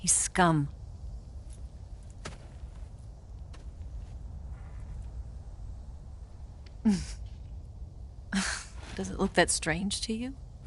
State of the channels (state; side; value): identical; both; correlation 1.00